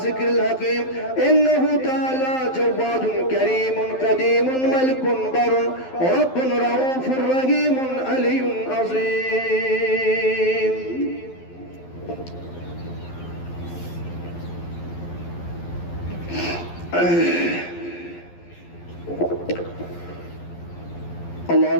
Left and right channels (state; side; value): late; right; 11 ms